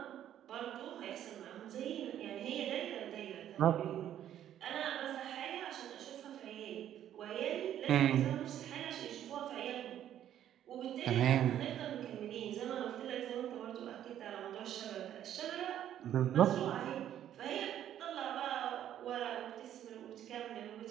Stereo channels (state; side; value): quieter; left; 11.0 dB